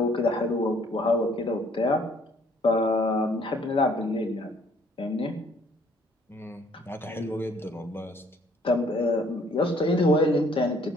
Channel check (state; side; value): normal; both; correlation 0.61